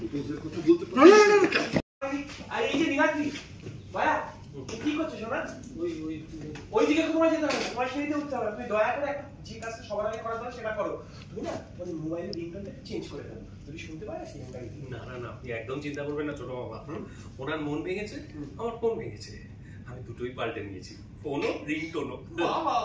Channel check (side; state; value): both; identical; correlation 1.00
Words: কথা বলতে পারি। আর এই যে নিগাতি ভাইয়া কি করছো সোনা? ওই দিকে তোমার যেতে হবে, তোমার সেদিকে উঠতে হবে। তুমি দয়া করে একটা যে কাজটা সবার আগে করা দরকার সেটা করো। তুমি না তোমার মোবাইলের রিংটোনটা চেঞ্জ করে দাও, যদি শুনতে পারে সেই মোবাইল। না না না, আপনি একদম চিন্তা করবেন না ছোট বাবা। ওনার মন ভেঙেছে, আমার ফোন ভেঙেছে, আমি দুটোই পাল্টে নিয়েছি, ফোনও রিংটোনও। বাহ বাহ